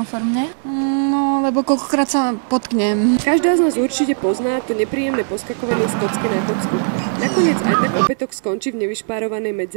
No, lebo koľkokrát sa potknem. Každá z nás určite pozná to nepríjemné poskakovanie z kocky na kocku. Nakoniec aj tak opätok skončí v nevyšpárovanej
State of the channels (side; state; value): left; silent; digital silence